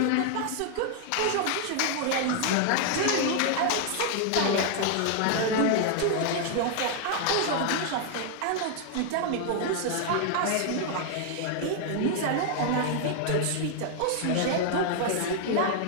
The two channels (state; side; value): different; both; correlation 0.00